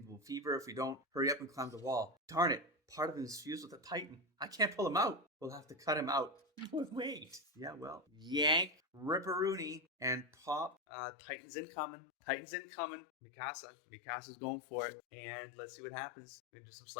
fever. If we don't hurry up and climb the wall. Darn it. Part of him is fused with a Titan. I can't pull him out. We'll have to cut him out. Wait. Yeah, well. Yank, ripperoonie, and pop. Titans incoming. Mikasa's going for it. And let's see what happens. We're going to do some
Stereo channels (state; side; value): drops out; right; at 10.8 s